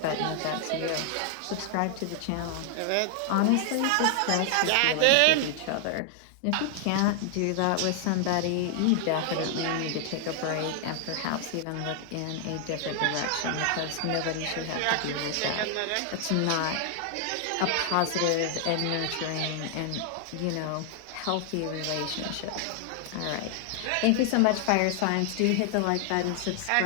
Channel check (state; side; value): different; both; correlation 0.00